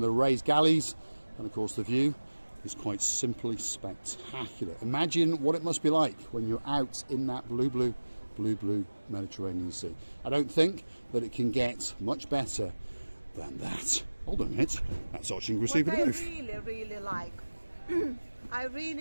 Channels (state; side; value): inverted; both; correlation -1.00